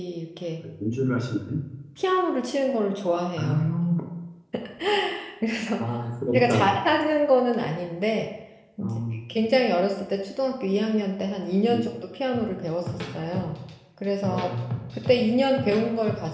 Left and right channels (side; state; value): both; identical; correlation 1.00